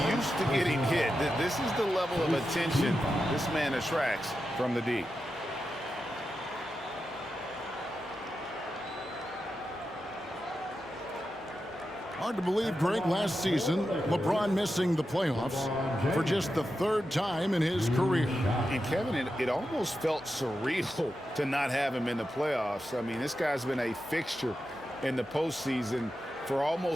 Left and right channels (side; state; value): right; noise; hum, 29 dB below the sound